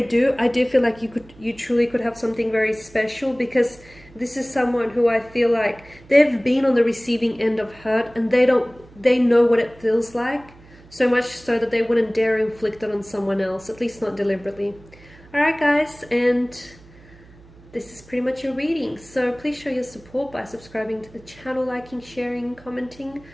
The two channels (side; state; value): right; noise; hum, 24 dB below the sound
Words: do, I do feel like you truly could have something very special, because this is someone who I feel like they've been on the receiving end of hurt, and they know what it feels like, so much so that they wouldn't dare inflict it on someone else, at least not deliberately. Alright guys, and this is pretty much your reading. So please show your support by subscribing to the channel, liking, sharing, commenting.